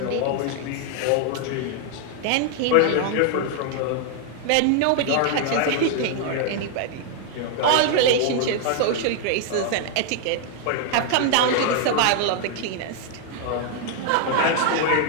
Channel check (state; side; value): different; both; correlation 0.00